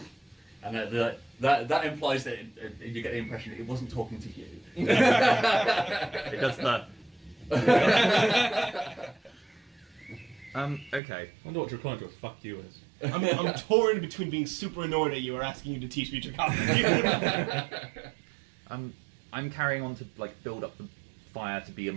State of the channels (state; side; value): drops out; left; at 11.0 s